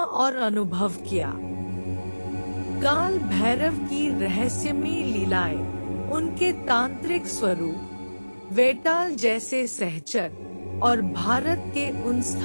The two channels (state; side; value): inverted; both; correlation -1.00